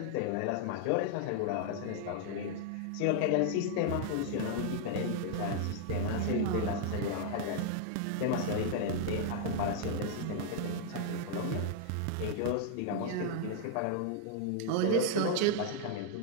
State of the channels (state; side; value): different; both; correlation 0.00